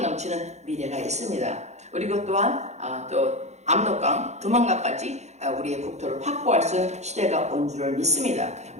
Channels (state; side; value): late; left; 0.33 ms